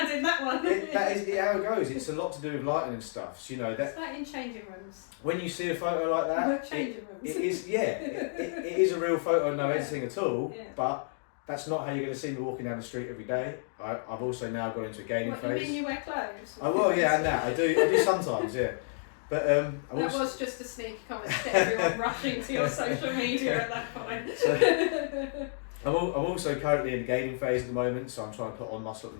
in that one. That is how it goes. It's a lot to do with lighting and stuff. So, that it's like in changing rooms. When you see a photo like that, changing rooms. It is it is a real photo, no editing at all. But that's not how you're going to see me walking down the street every day. I've also now got into a gaining phase. You mean you wear clothes? I will, and that I do sometimes, But that was just a sneaky comment to get everyone rushing to your social media at that point. So, I'm also currently in the gaining phase at the moment, so I'm trying to put on muscle at the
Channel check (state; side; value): silent; right; digital silence